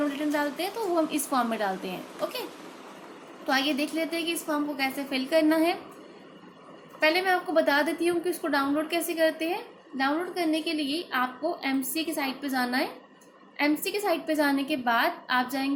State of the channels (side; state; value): both; identical; correlation 1.00